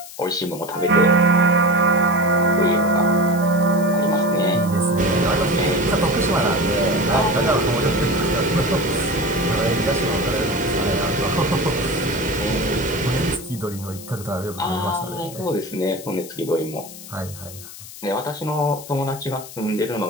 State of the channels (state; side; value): noise; left; hiss, 15 dB below the sound